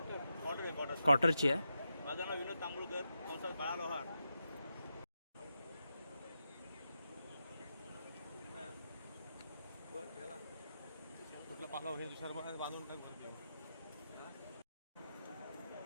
क्वार्टरची आहे। माझं नाव विनोद तांबुळकर, कंसात बाळा लोहार। कुठला पालाव हे दुसऱ्या बांधून टाकतो।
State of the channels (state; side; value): inverted; both; correlation -0.87